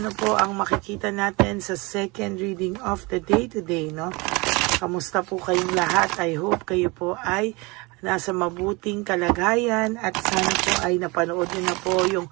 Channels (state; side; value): quieter; left; 25.8 dB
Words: po ang makikita natin sa second reading of the day today, no? Kamusta po kayong lahat? I hope kayo po ay nasa mabuting kalagayan at sana po ay napanood niyo na po yung